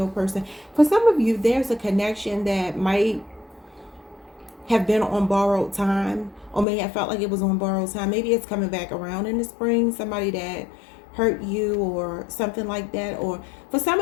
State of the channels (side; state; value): right; drops out; at 6.7 s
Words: person. For some of you, there's a connection that might have been on borrowed time, or may have felt like it was on borrowed time. Maybe it's coming back around in the spring. Somebody that hurt you or something like that. Or for some